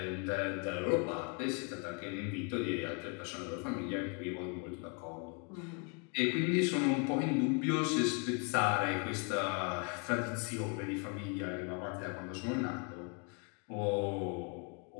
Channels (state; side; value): quieter; right; 35.4 dB